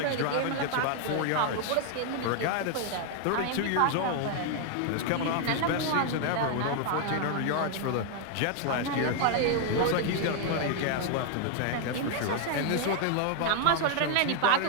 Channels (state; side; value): different; both; correlation 0.00